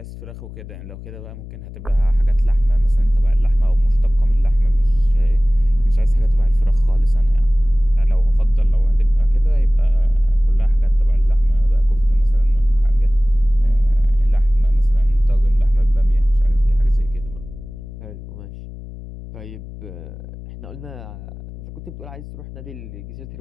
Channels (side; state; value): left; noise; hum, 14 dB below the sound